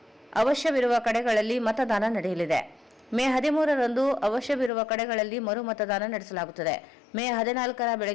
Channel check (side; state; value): right; drops out; at 4.7 s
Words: ಅವಶ್ಯವಿರುವ ಕಡೆಗಳಲ್ಲಿ ಮತದಾನ ನಡೆಯಲಿದೆ. ಮೇ 13ರಂದು ಅವಶ್ಯವಿರುವ ಕಡೆಗಳಲ್ಲಿ ಮರು ಮತದಾನ ನಡೆಸಲಾಗುತ್ತದೆ. ಮೇ 14ರ